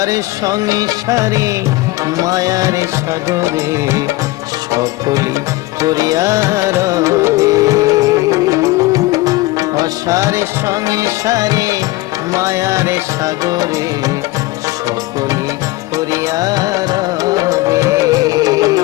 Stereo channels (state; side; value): quieter; right; 19.7 dB